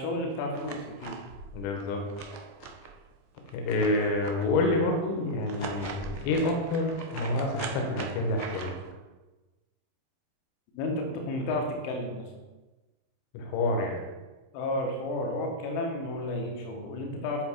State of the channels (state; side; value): late; right; 30 ms